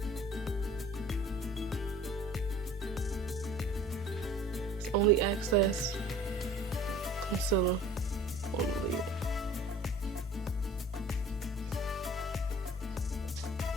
Only excess concealer on the lid.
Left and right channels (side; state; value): both; normal; correlation 0.48